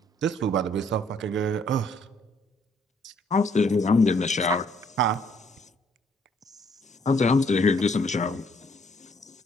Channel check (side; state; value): both; normal; correlation 0.66